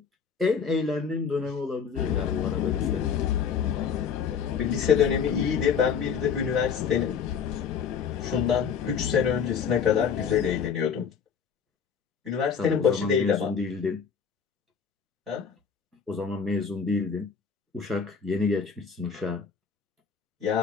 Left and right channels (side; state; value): right; quieter; 6.6 dB